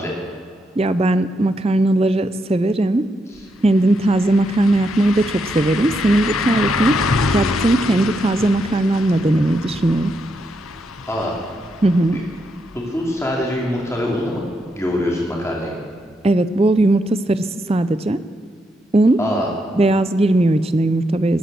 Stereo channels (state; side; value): normal; both; correlation 0.81